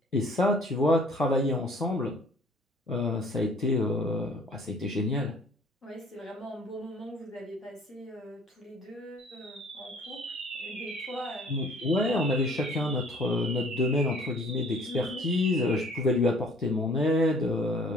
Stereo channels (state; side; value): normal; both; correlation 0.54